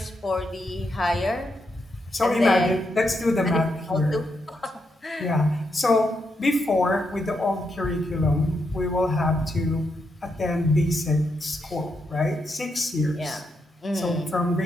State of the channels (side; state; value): both; normal; correlation 0.82